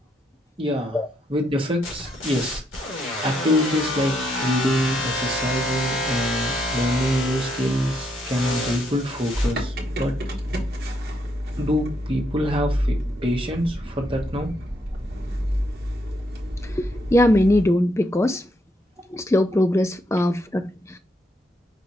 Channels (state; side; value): normal; both; correlation 0.76